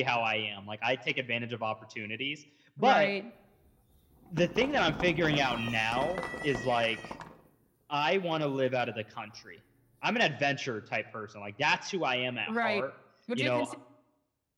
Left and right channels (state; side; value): identical; both; correlation 1.00